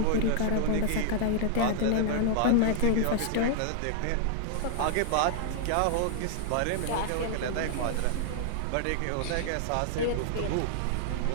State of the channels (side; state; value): both; different; correlation -0.01